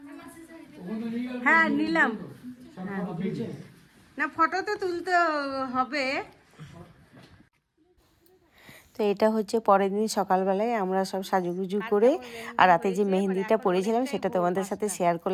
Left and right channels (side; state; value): both; identical; correlation 1.00